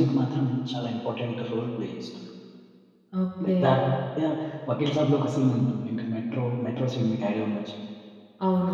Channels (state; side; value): identical; both; correlation 1.00